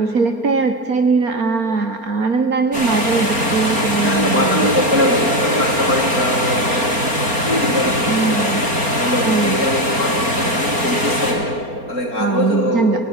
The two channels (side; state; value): left; late; 4.3 ms